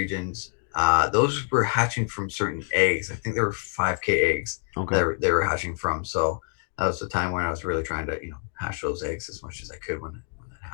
Those were hatching from certain eggs. I think there were 5K eggs Okay. that they were hatching from. So that was the time when I was really trying to hatch those eggs as much as I could when that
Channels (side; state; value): right; silent; 61 dB below the other